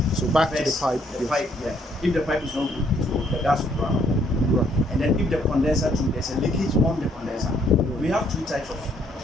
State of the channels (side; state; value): both; normal; correlation 0.68